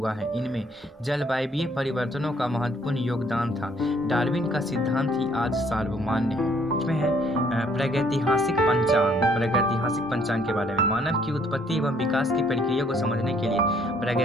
है। इनमें जलवायवीय परिवर्तनों का महत्वपूर्ण योगदान था। डार्विन का सिद्धांत ही आज सार्वमान्य है। इसमें है प्रागैतिहासिक पंचांग के बारे में। मानव की उत्पत्ति एवं विकास की प्रक्रिया को समझने के लिए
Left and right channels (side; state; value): both; normal; correlation 0.63